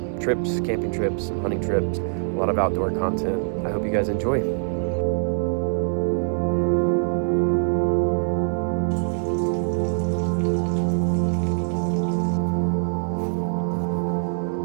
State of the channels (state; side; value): silent; left; 61 dB below the other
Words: trips, camping trips, some hunting trips, a lot of outdoor content. I hope you guys enjoy. You